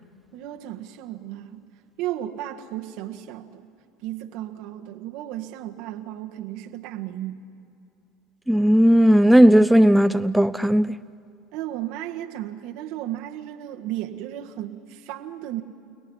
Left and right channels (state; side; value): normal; both; correlation 0.94